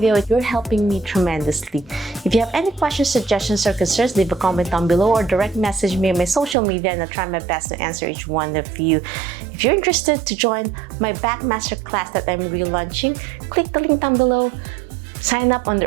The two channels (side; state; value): left; drops out; at 6.6 s